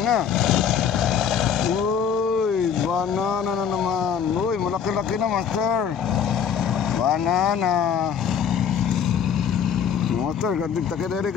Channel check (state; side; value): quieter; right; 7.6 dB